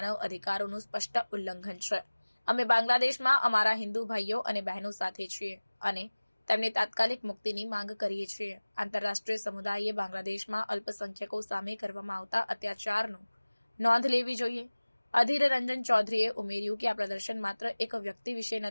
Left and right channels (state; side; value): inverted; both; correlation -1.00